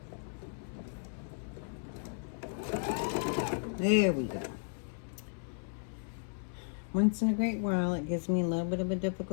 There we go. Once in a great while, it gives me a little bit of a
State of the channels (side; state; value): right; silent; 55 dB below the other